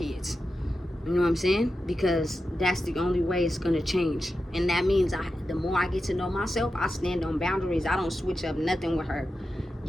You know what I'm saying? Because that's the only way it's gonna change. And that means the more I get to know myself, I stand on boundaries. I don't switch up nothing with her.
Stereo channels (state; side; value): normal; both; correlation 0.91